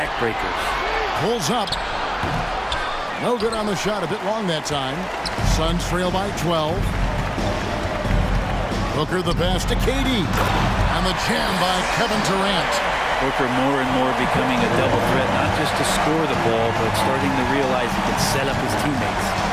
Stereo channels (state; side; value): identical; both; correlation 1.00